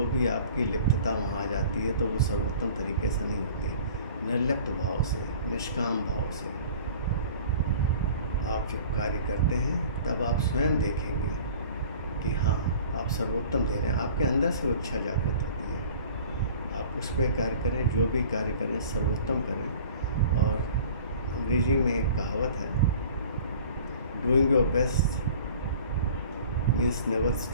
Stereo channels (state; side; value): inverted; both; correlation -0.46